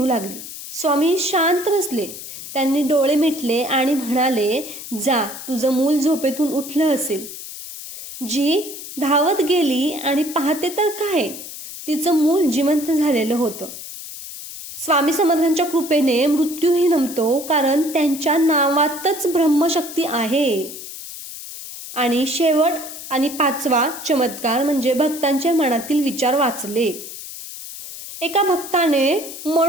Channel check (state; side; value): noise; left; hiss, 11 dB below the sound